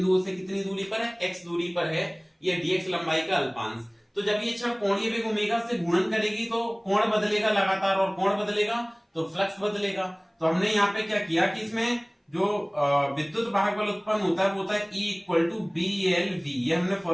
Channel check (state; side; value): identical; both; correlation 1.00